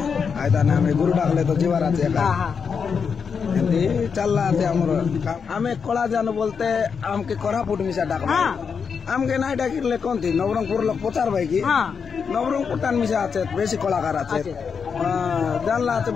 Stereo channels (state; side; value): quieter; right; 6.1 dB